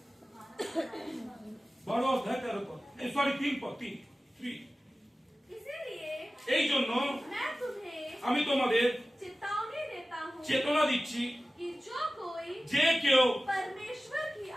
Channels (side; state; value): both; normal; correlation 0.96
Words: 12 अध्याय 13 पद, सॉरी 3 पद, 3। इसीलिए এই জন্য मैं तुम्हें আমি তোমাদের चेतावनी देता हूँ চেতনা দিচ্ছি, कि जो कोई যে কেউ परमेश्वर की